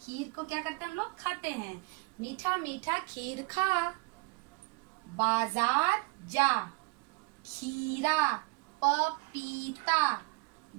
को क्या करते हैं हम लोग? खाते हैं। मीठा मीठा खीर खा। बाजार जा। खीरा पपीता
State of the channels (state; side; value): quieter; left; 27.5 dB